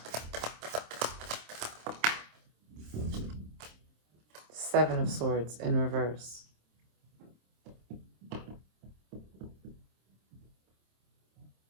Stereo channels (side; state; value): left; late; 26 ms